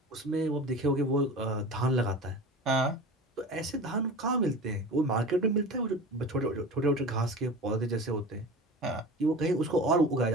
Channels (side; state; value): both; normal; correlation 0.34